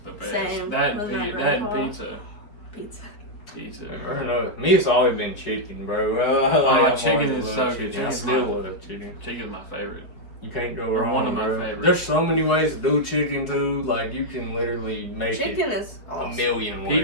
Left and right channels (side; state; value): right; late; 4.5 ms